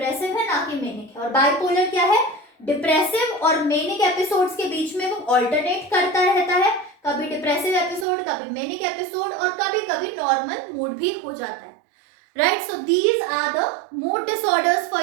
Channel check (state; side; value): drops out; left; at 8.1 s